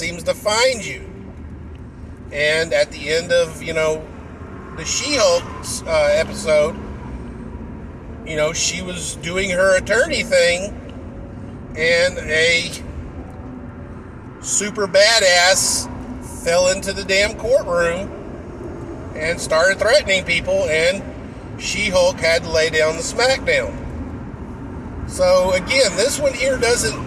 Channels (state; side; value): identical; both; correlation 1.00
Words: to find you. And at the end of, the She-Hulk's episode, she was doing her attorney thing, and a super badass fell into the damn courtroom and started threatening people, and She-Hulk had to lay down the smackdown. So again, this one here